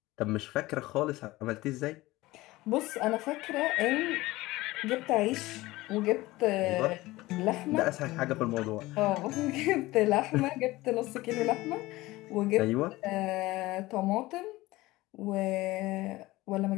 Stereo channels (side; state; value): right; quieter; 19.1 dB